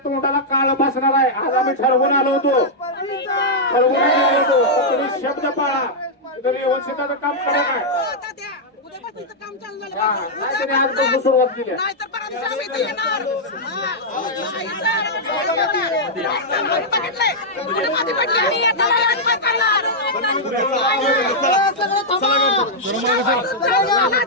तोंडाला काळ बसणार आहे. आज आम्ही ठरवून आलो होतो, तुम्ही शब्द पाळा. तरी व्यवस्थिताचं काम करा काय उद्यापासून इथं काम चालू झालं नाहीतरी आजपासून सुरुवात केली. नाही तर परत दिवशी आम्ही इथे येणार. नाही सर, बघितलंय पुढे मध्ये पडली आणि आता आम्ही काय करणार?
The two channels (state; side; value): normal; both; correlation -0.06